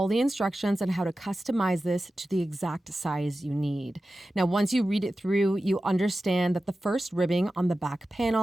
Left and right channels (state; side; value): normal; both; correlation 0.94